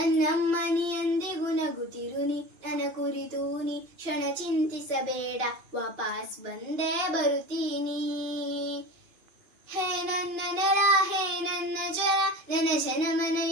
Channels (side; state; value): left; late; 2.9 ms